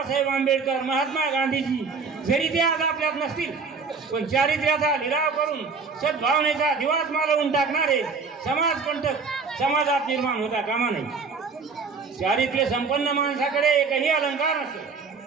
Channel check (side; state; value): left; quieter; 4.9 dB